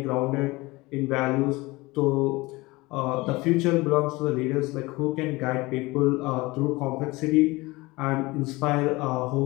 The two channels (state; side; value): quieter; right; 22.1 dB